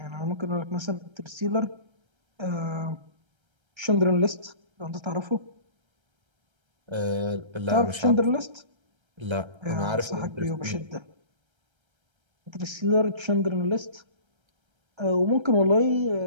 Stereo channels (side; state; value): left; late; 1.3 ms